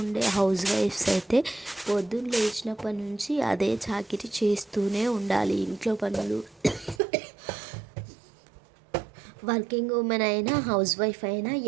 ఉండే హౌస్ వైఫ్స్ అయితే పొద్దున్న లేచినప్పటి నుంచి అదే చాకిరీ చేస్తూనే ఉండాలి ఇంట్లో పనులు. వర్కింగ్ ఉమెన్ అయినా హౌస్ వైఫ్ అయినా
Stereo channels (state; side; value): drops out; left; at 7.0 s